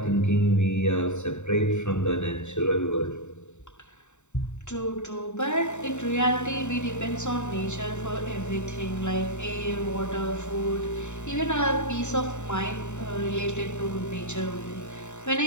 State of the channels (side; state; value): right; late; 0.84 ms